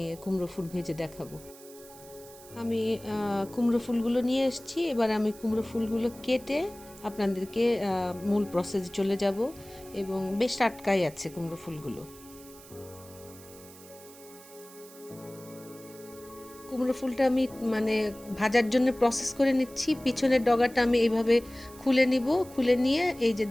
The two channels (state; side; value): noise; right; hiss, 20 dB below the sound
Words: কুমড়ো ফুল ভেজে দেখাবো। আমি কুমড়ো ফুলগুলো নিয়ে এসেছি। এবার আমি কুমড়ো ফুলগুলো কেটে আপনাদেরকে মূল প্রসেসে চলে যাব, এবং বেশ টাটকাই আছে কুমড়ো ফুলগুলো। কুমড়ো ফুলটা আমি মানে ভাজার জন্য প্রসেস করে নিচ্ছি। পিছনের ডগাটা আমি এইভাবে খুলে নিব। খুলে নিয়ে এই যে